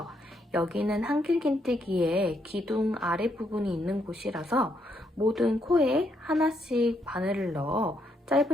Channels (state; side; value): normal; both; correlation 0.76